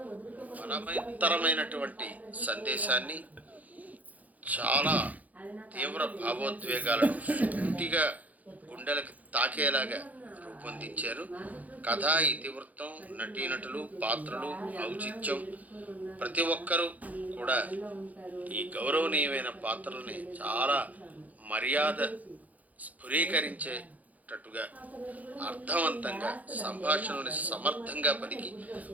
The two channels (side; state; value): left; late; 0.077 ms